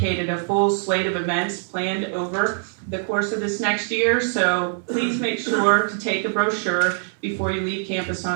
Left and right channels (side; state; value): left; silent; digital silence